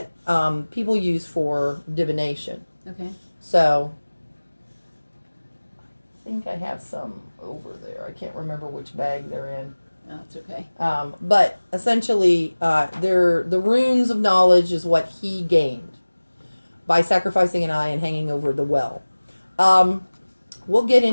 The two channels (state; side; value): inverted; both; correlation -1.00